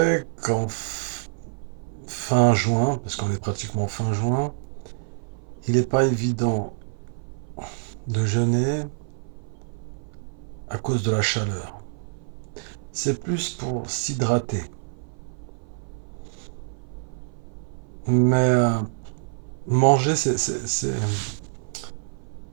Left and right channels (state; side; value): silent; left; 56 dB below the other